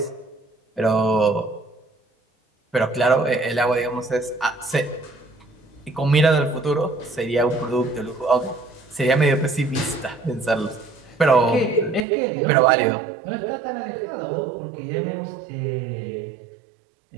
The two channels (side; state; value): left; drops out; at 12.1 s